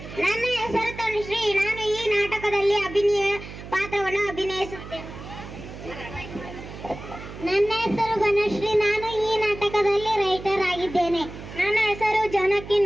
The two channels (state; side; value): noise; right; hum, 13 dB below the sound